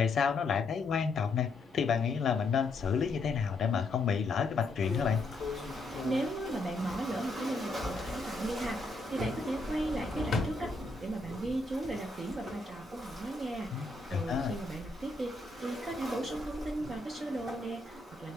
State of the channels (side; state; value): right; quieter; 3.0 dB